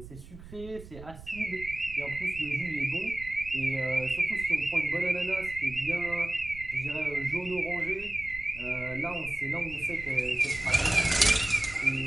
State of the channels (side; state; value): right; noise; rumble, 16 dB below the sound